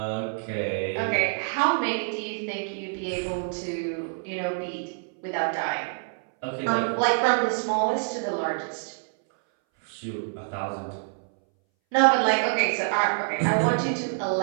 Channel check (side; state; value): left; silent; 60 dB below the other